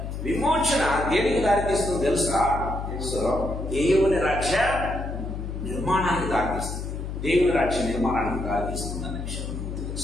విమోచన దేనికి దారితీస్తుంది తెలుసా? సో దేవుని రాజ్య నిర్మాణానికి దారితీస్తుంది. దేవుని రాజ్య నిర్మాణానికి దారితీస్తుంది అనే విషయం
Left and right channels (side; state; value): left; noise; hum, 6 dB below the sound